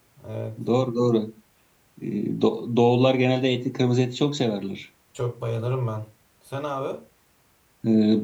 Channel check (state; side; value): identical; both; correlation 1.00